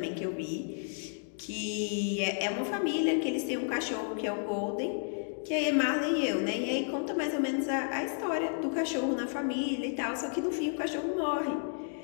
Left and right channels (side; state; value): right; silent; digital silence